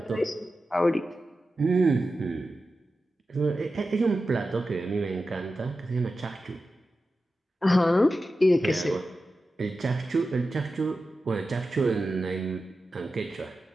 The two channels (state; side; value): normal; both; correlation 0.92